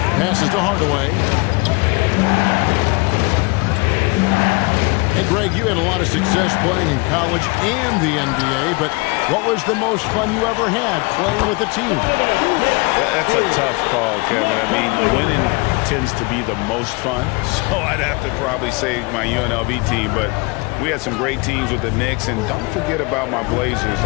to Hardaway. Hey, Greg, you had a lot of success playing in college and the NBA, but what was the most fun you ever had playing with a team? That's a tough call, Kevin. I mean, winning tends to be the most fun, so I'd have to probably say my UNLV team, but we had some great teams with the Knicks, and don't forget about my Blazers.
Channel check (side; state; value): right; quieter; 27.7 dB